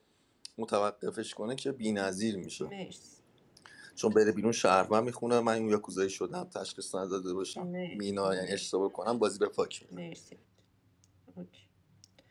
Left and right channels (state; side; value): identical; both; correlation 1.00